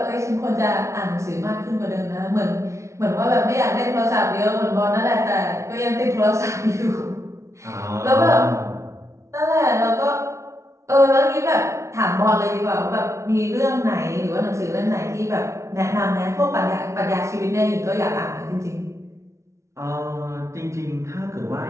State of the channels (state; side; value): late; left; 0.14 ms